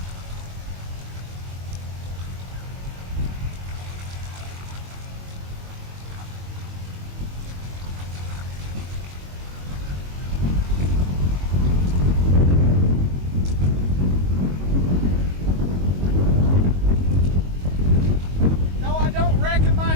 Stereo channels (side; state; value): left; late; 22 ms